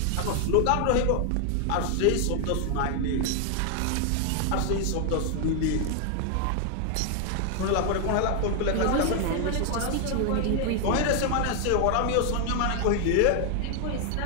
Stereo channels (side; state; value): both; different; correlation 0.00